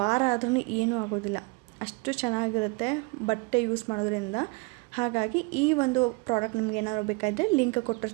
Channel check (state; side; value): quieter; left; 28.6 dB